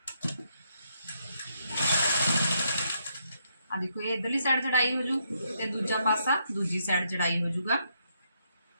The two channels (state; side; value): inverted; both; correlation -0.77